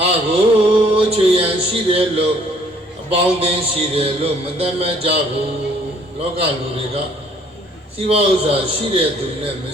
ါကိုချွေရန်ရှိတယ်လို့အပေါင်းအသင်းရှိတယ်လို့မသတ်မှတ်ကြဘူးလောကလူတွေကစီးပွားဥစ္စာရှိတဲ့သူနဲ့မ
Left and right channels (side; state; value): both; normal; correlation 0.61